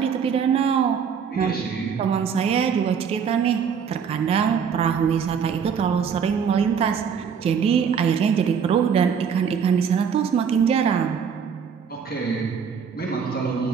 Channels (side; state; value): left; quieter; 6.9 dB